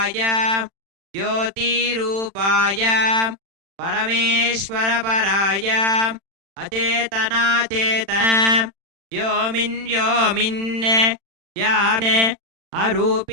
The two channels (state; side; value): late; left; 36 ms